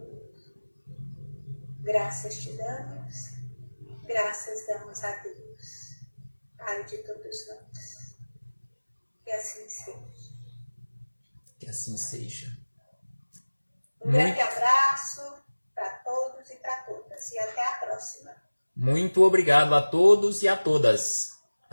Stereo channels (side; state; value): both; inverted; correlation -1.00